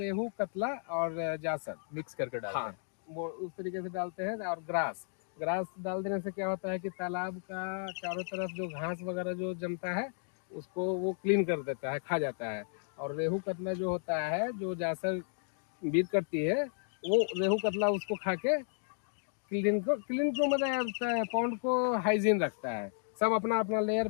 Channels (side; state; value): right; silent; digital silence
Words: रेहू, कतला और जासर मिक्स करके डालते हाँ, हैं? वो उस तरीके से डालते हैं। और ग्रास डाल देने से क्या होता है कि तालाब का चारों तरफ जो घास वगैरह जो जमता है उसको वो क्लीन कर देता है, खा जाता है। और रेहू कतला जो होता है, जो जासर बीट करती है, वो रेहू कतला उसको खा के क्लीन को मतलब पॉन्ड को हाइजीन रखता है। सब अपना अपना लेयर